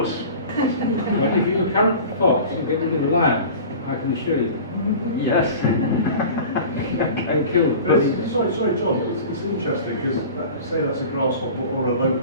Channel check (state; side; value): inverted; both; correlation -0.38